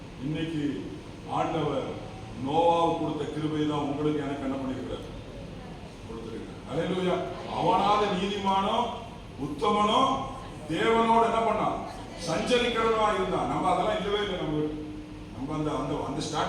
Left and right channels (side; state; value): both; identical; correlation 1.00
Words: இன்னைக்கு ஆண்டவர் நோவாவுக்கு கொடுத்த கிருபை தான் உங்களுக்கு எனக்கு என்ன பண்ணிருக்கிறார்? கொடுத்திருக்கிறார். அல்லேலூயா. அவனால நீதிமானோ உத்தமனோ தேவனோடு என்ன பண்ணான்? சஞ்சரிக்கிறவனா இருந்தான். நம்ம அதெல்லாம் இல்லவே இல்லை. நம்ம அந்த அந்த அந்த